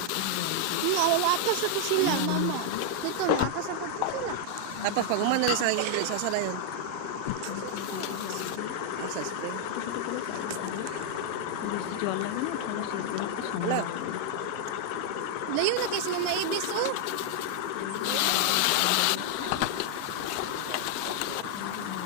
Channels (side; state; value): both; different; correlation 0.00